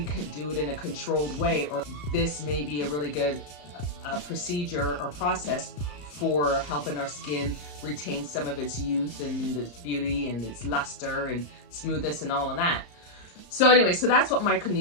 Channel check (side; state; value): right; late; 34 ms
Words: could do it in a controlled way, or this may be a really good procedure or process for helping our skin retain some of its youth and its beauty and its luster and smoothness and all of that. So anyway, so that's what